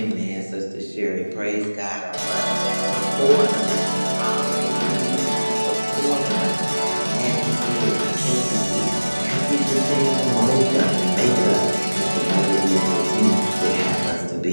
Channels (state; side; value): inverted; both; correlation -1.00